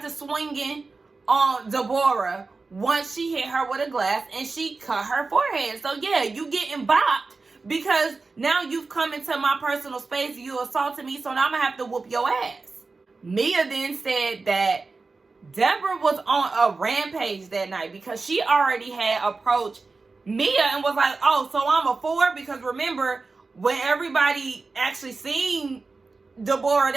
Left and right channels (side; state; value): left; quieter; 4.0 dB